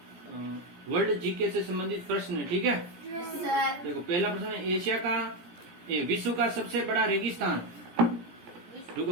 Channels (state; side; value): late; left; 17 ms